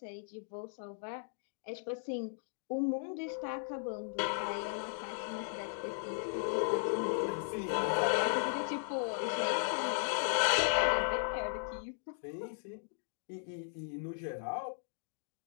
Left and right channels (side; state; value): right; silent; digital silence